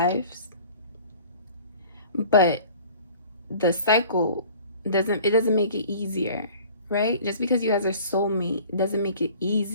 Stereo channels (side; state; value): both; inverted; correlation -0.48